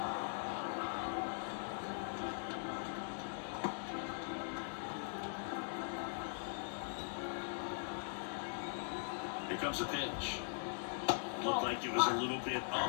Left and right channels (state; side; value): silent; right; 50 dB below the other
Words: Here comes a pitch. Looked like it was a little bit